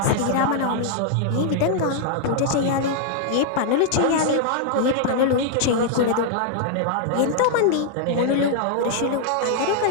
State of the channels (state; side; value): different; both; correlation -0.01